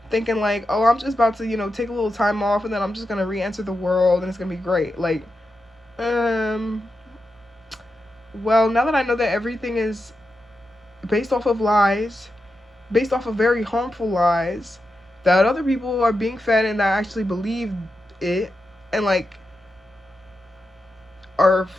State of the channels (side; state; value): both; normal; correlation 0.89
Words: thinking like, oh, I'm just about to, take a little time off and then I'm just going to re-enter the world and it's going to be great. Like, well, now that I know that everything is based off of lies, based off of very harmful lies, that other people are being fed and that actually believe it and like are